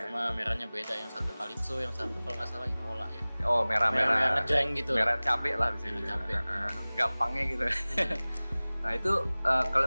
Cuma merahnya beda, yang satu Calypso, yang satu kalau nggak salah Imola ya. Oh merah-merah. Ngejreng gitu. Merah cabe lah bisa merah cabe. Gampangnya gitu. Nah itu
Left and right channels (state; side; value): inverted; both; correlation -0.99